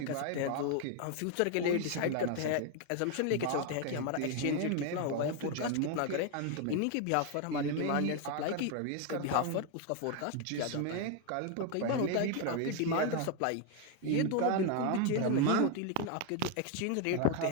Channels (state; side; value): different; both; correlation 0.01